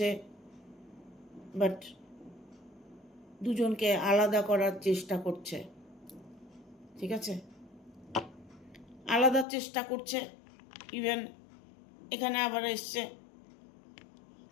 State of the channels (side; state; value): right; drops out; at 9.5 s